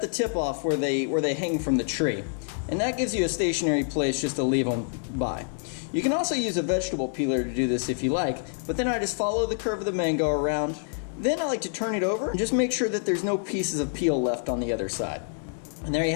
the tip off where they hang from the tree, and that gives you a stationary place just to leave them by. You can also use a vegetable peeler to do this if you like, but then I just follow the curve of the mango around. Then I like to turn it over and just make sure that there's no pieces of peel left on the other side. And there you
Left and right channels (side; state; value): right; silent; 60 dB below the other